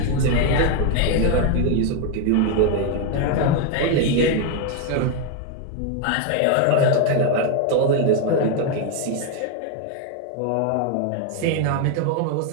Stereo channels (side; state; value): both; different; correlation 0.01